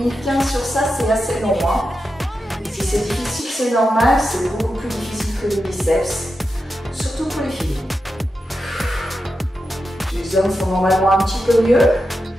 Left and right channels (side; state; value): both; normal; correlation 0.89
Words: 15 sur ça, c'est assez long. Hein. Si c'est difficile, c'est normal. C'est beaucoup plus difficile que les biceps. Surtout pour les filles. Les hommes font normalement un petit peu mieux.